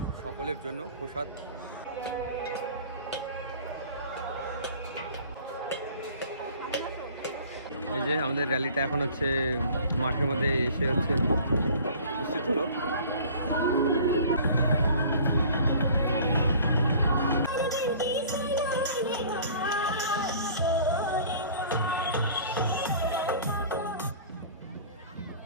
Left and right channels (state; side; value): inverted; both; correlation -0.46